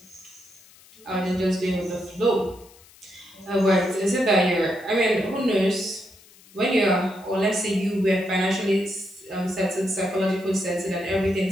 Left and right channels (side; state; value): left; noise; hiss, 25 dB below the sound